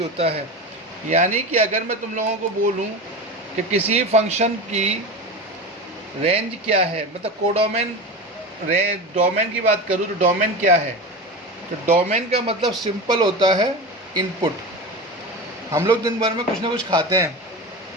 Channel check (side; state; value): both; normal; correlation 0.26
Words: होता है। यानी कि अगर मैं तुम लोगों को बोलूं कि किसी फंक्शन की रेंज क्या है, मतलब कोडोमेन डोमेन की बात करूं तो डोमेन क्या है, तो डोमेन का मतलब सिंपल होता है इनपुट। हम लोग दिन भर में कुछ ना कुछ खाते हैं।